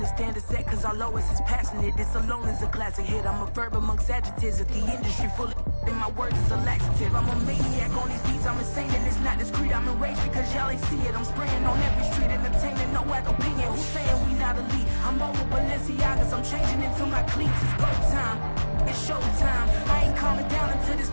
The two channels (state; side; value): inverted; both; correlation -1.00